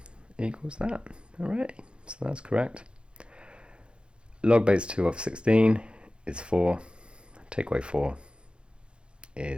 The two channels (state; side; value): late; left; 0.055 ms